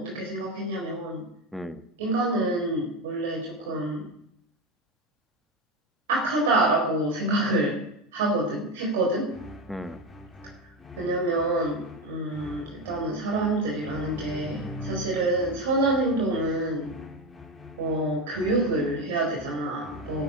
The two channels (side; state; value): both; normal; correlation 0.16